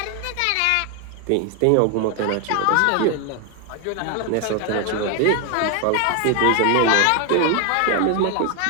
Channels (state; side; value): different; both; correlation 0.01